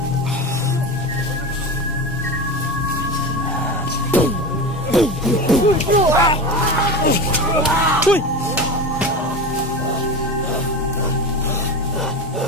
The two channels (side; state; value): both; normal; correlation 0.25